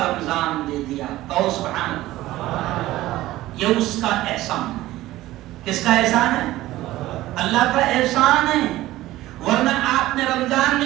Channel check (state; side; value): quieter; left; 16.3 dB